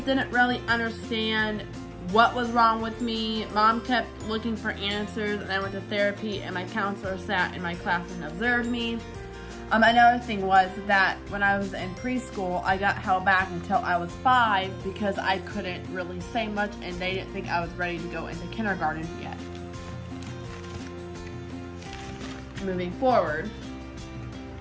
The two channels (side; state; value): both; identical; correlation 1.00